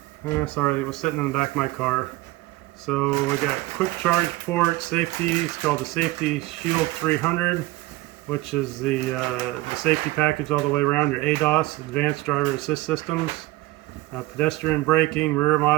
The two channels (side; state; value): left; quieter; 19.0 dB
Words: Sorry, it was sitting in the back of my car. So we got quick charge port, safety, it's called the Safety Shield 300, which is the safety package all the way around, your ADAS, Advanced Driver Assist Systems, pedestrian braking, rear